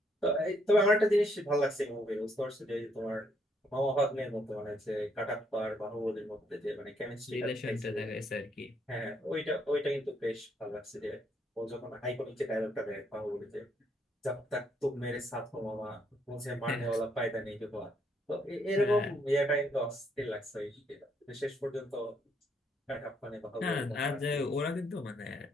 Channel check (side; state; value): both; normal; correlation 0.72